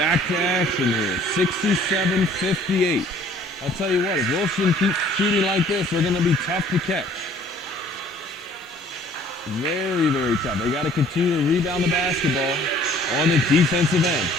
to action here. 67-58. I'll tell you what, if Wilson keeps shooting like this, they're going to be tough to catch. Very, very tough. They got to continue to rebound the basketball on the defensive end.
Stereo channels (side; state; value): both; normal; correlation 0.55